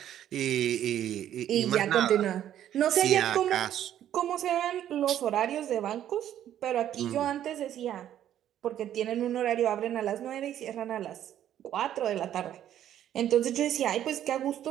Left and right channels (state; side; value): quieter; left; 11.1 dB